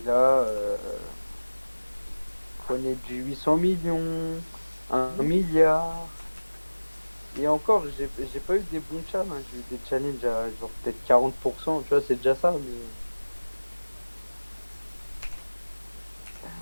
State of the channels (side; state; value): both; inverted; correlation -1.00